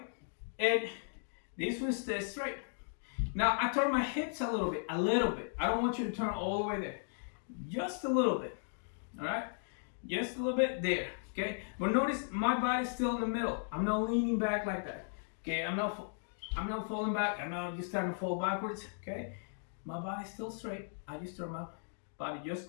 and this foot stays straight. Now I turn my hips a little bit. I don't want you to turn all the way there. Just a little bit, all right? Just a little bit there, okay? But notice my body's still in the middle. I'm not leaning back like that, okay? I'm not falling back. I'm not just starting to fall backwards, okay? My body's still straight. I just turn my body just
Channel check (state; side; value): silent; right; digital silence